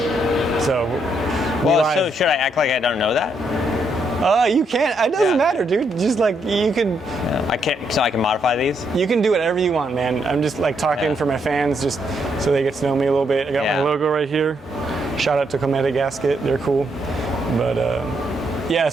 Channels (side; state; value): both; normal; correlation 0.76